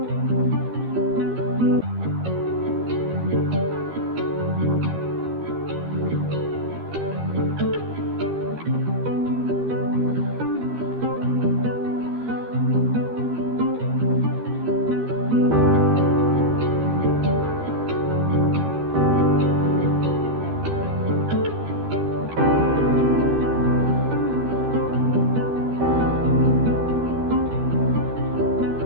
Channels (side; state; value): left; late; 13 ms